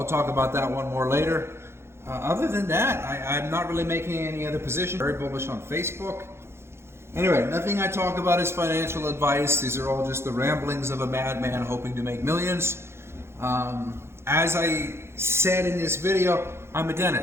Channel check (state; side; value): late; left; 0.12 ms